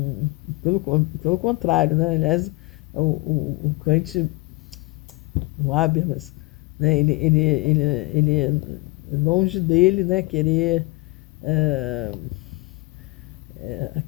pelo contrário, né? Aliás, o Kant, o Habermas, né? Ele longe dele, né, querer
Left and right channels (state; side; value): quieter; right; 24.0 dB